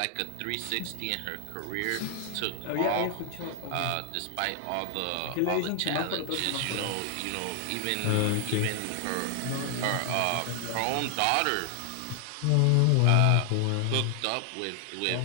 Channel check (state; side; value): different; both; correlation 0.00